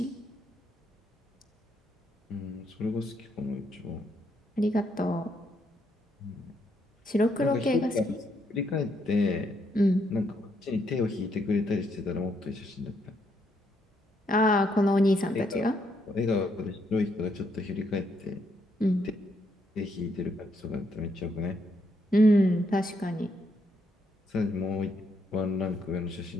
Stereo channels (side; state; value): both; normal; correlation 0.75